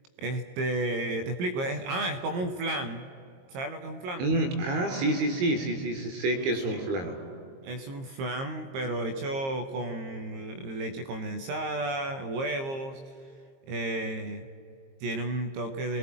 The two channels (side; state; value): left; late; 22 ms